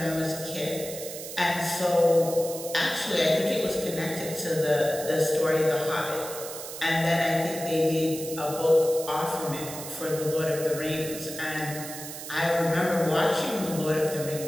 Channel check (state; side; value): noise; right; hiss, 10 dB below the sound